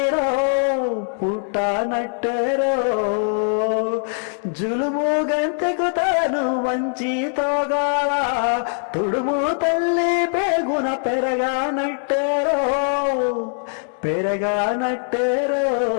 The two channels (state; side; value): silent; right; digital silence